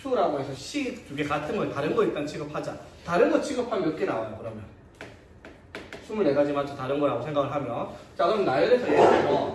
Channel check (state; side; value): identical; both; correlation 1.00